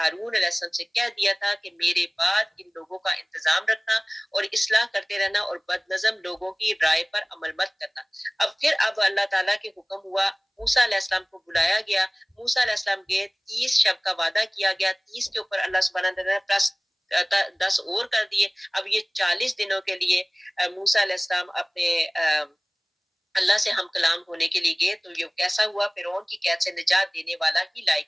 علیہ السلام سے کہہ دیا تھا کہ میرے بعد ان لوگوں کا انتظام رکھنا اور اصلاح کرتے رہنا، اور بد نظم لوگوں کی رائے پر عمل مت کرنا۔ اب اللہ تعالیٰ کے حکم ہوا، موسیٰ علیہ السلام کو بلایا گیا، موسیٰ علیہ السلام گئے، 30 شب کا وعدہ کیا گیا، 30 کے اوپر اللہ سبحانہ وتعالیٰ نے پلس 10 اور کر دیے۔ اب یہ 40 دنوں کے لیے موسیٰ علیہ السلام اپنے اللہ سے ہم کلام ہونے کے لیے گئے، تو یہ کیسا ہوا؟ فرعون کی قید سے نجات دینے والا ہی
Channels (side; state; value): both; identical; correlation 1.00